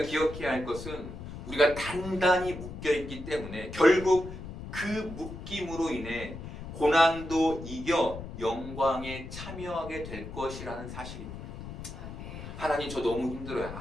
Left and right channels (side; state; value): left; noise; rumble, 10 dB below the sound